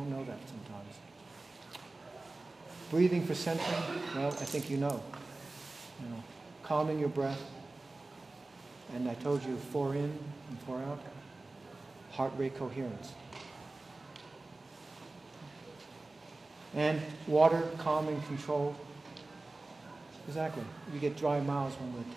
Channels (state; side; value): quieter; left; 3.1 dB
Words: know that sometimes. Breathing for centering, well, I think you know. Calming your breath. And I told you 4 in and 4 out. Heart rate coherence. And water, calming, control. Exactly. We get dry mouths when we're